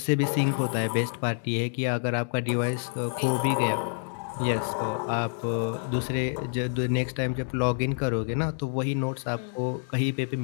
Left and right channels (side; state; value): right; silent; digital silence